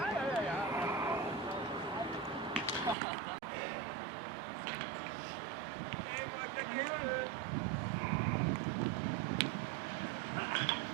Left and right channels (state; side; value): drops out; left; at 3.0 s